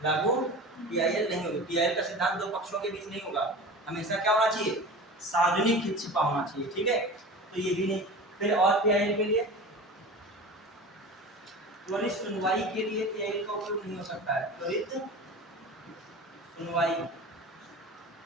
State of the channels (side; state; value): both; normal; correlation 0.34